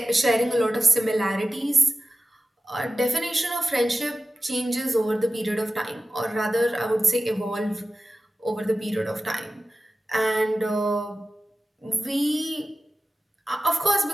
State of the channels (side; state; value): both; normal; correlation 0.94